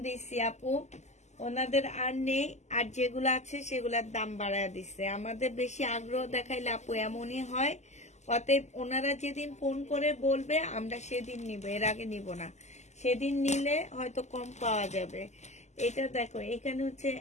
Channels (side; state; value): right; late; 0.33 ms